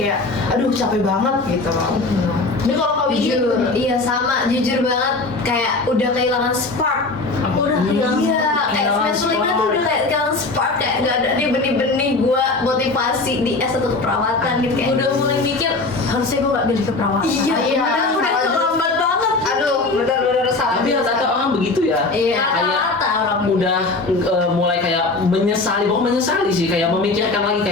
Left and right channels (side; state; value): right; quieter; 3.4 dB